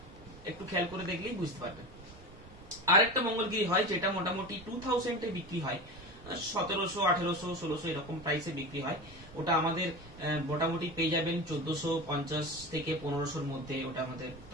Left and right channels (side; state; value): both; normal; correlation 0.27